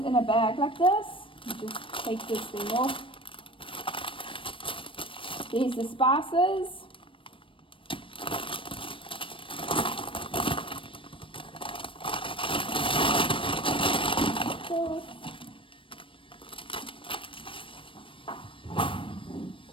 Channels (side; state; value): right; late; 0.25 ms